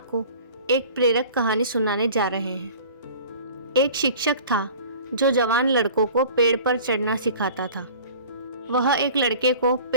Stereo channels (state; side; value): inverted; both; correlation -0.44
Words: एक प्रेरक कहानी सुनाने जा रहे हैं। एक शिक्षक था जो जवान लड़कों को पेड़ पर चढ़ना सिखाता था। वह एक लड़के को